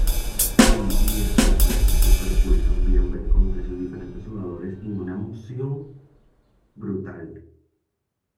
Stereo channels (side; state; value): both; identical; correlation 1.00